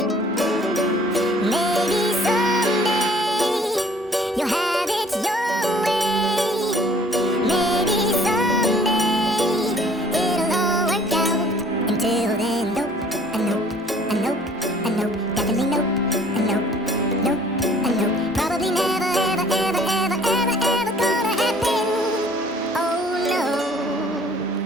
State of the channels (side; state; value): both; normal; correlation 0.55